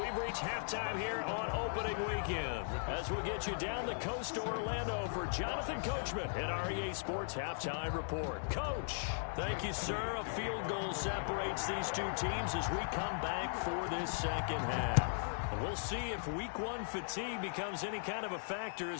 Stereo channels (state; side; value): silent; right; digital silence